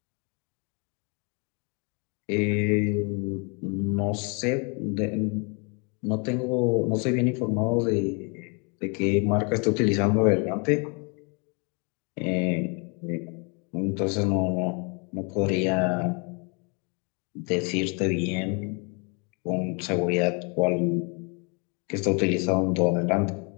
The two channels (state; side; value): quieter; right; 34.5 dB